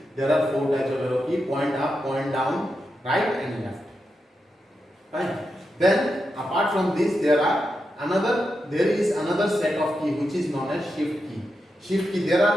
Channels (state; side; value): normal; both; correlation 0.87